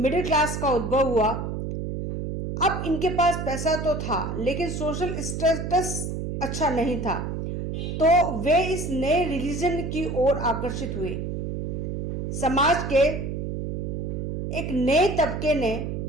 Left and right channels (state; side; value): noise; right; hum, 4 dB below the sound